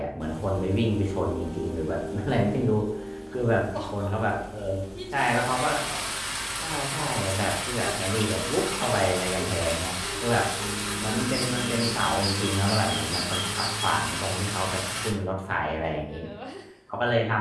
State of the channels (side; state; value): both; identical; correlation 1.00